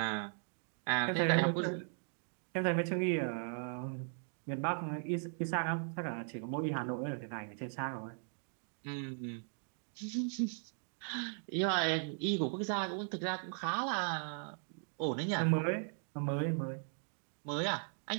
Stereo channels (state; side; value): silent; left; 52 dB below the other